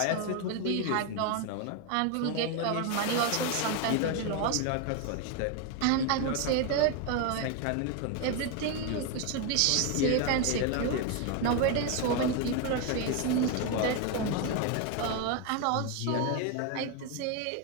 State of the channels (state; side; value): different; both; correlation 0.01